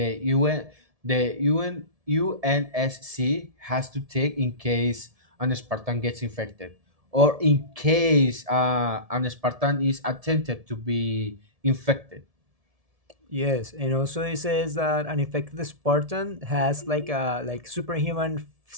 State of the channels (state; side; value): late; left; 1.7 ms